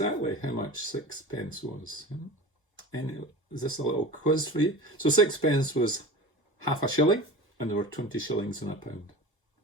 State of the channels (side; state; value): both; normal; correlation 0.35